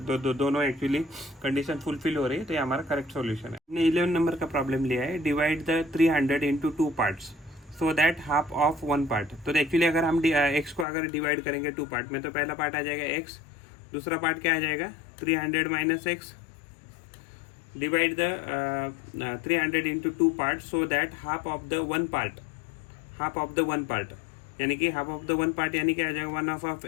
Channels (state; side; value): drops out; right; at 10.9 s